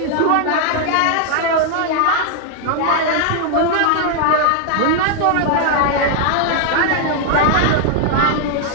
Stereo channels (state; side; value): different; both; correlation 0.00